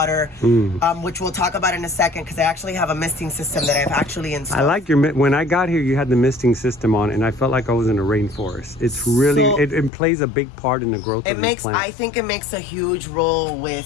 which we'll talk about in a second, because I actually have a misting system that I've actually installed. I like when I got here, you had the misting system on, and I felt like I was in a rainforest. It's really, it plays a big part in the growth of these plants. I think it makes a huge role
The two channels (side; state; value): right; drops out; at 9.9 s